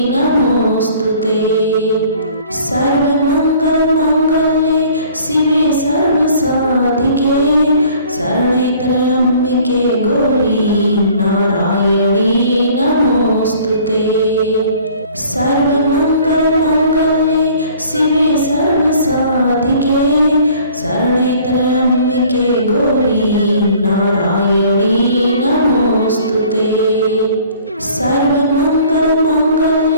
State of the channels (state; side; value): inverted; both; correlation -0.53